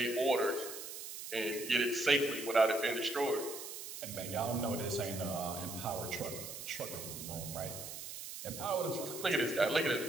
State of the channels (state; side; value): noise; right; hiss, 9 dB below the sound